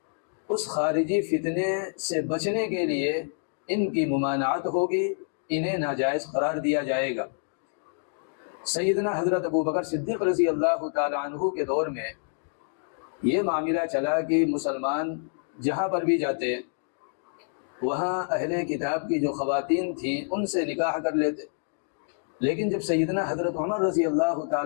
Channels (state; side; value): silent; right; digital silence